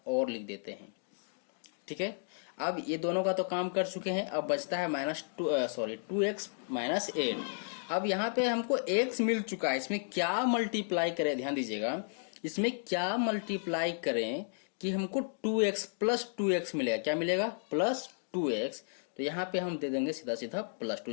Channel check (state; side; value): silent; right; digital silence